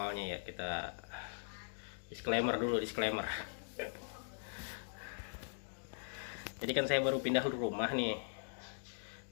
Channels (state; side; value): silent; right; digital silence